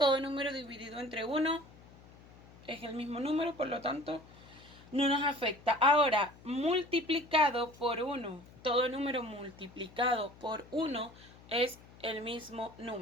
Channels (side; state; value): left; noise; hum, 22 dB below the sound